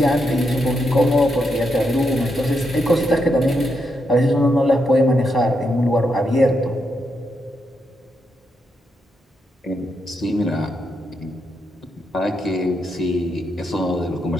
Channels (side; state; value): both; normal; correlation 0.82